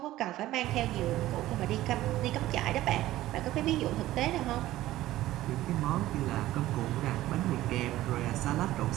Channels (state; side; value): quieter; left; 15.4 dB